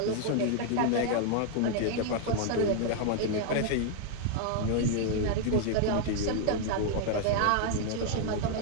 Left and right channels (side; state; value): both; different; correlation 0.00